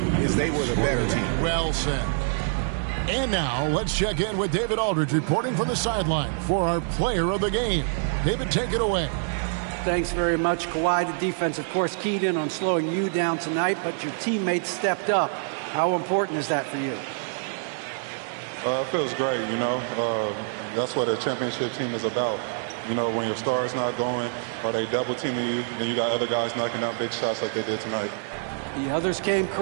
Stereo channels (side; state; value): left; silent; digital silence